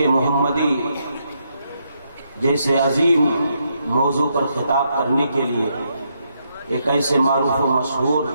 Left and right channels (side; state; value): both; inverted; correlation -0.78